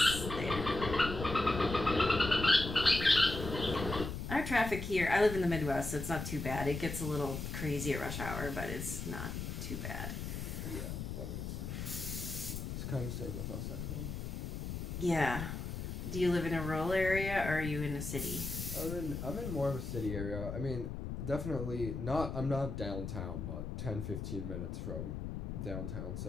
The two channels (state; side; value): noise; left; rumble, 5 dB below the sound